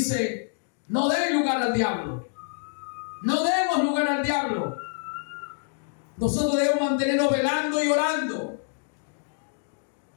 no den lugar al diablo. No demos lugar al diablo. Nosotros debemos mantenernos velando y orando.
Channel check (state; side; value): silent; right; digital silence